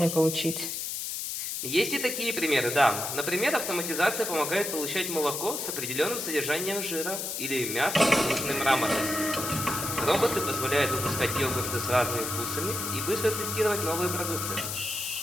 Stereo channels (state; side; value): noise; left; hiss, 4 dB below the sound